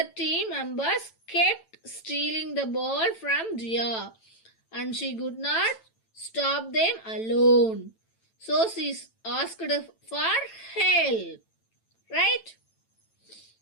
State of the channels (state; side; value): late; right; 9.0 ms